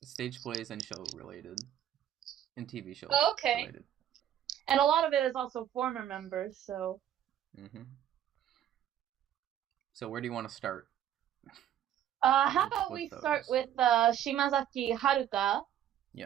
Stage plays and show related. And TV shows related. And a lot of it is also former members, so. So where do you want to start? How about we start with Shimazaki Haruka?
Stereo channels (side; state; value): left; quieter; 10.9 dB